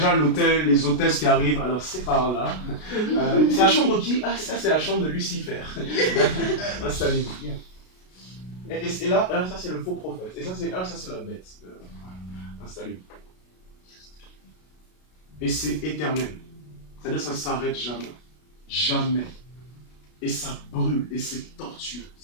l'hôtel, les hôtesses qui arrivent. Alors, c'est par là. C'est la chambre qui? Ah, ça, c'est la chambre de Lucifer. Installez-vous. Et là, ça, c'est le faux prophète. Et ça, c'est la bête. Installez-vous. Et c'est éternel. C'est-à-dire, ça ne s'arrête jamais. Jamais. Et ça brûle. Et c'est tortueux.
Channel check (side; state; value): right; late; 33 ms